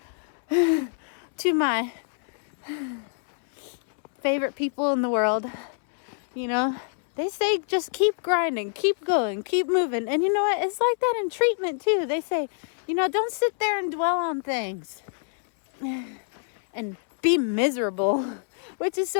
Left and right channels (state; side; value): silent; right; 61 dB below the other